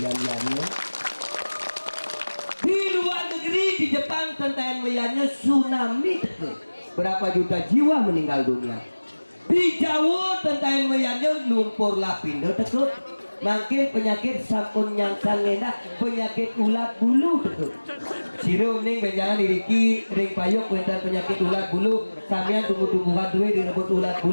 iannya di luar negeri di Jepang tentang iannya tsunami berapa juta jiwa meninggal dunia di Jawa tentang iannya lumpur lapindo tekuk makin penyakit sampun yang sangena penyakit ulat bulu tuh sirum ning benjangan diriki ring payuk wenten penyakit ulat bulu samian tumbuh-tumbuhan duwe direbut ulat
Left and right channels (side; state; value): both; inverted; correlation -1.00